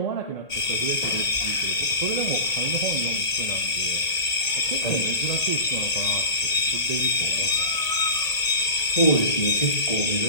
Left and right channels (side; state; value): right; late; 1.8 ms